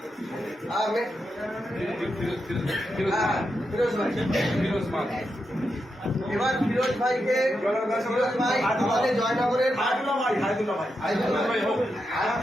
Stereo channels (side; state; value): both; normal; correlation 0.86